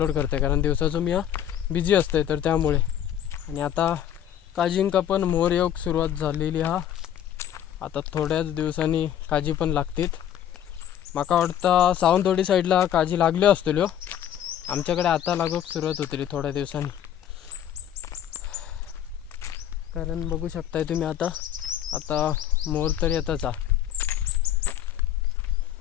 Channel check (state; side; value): quieter; right; 10.5 dB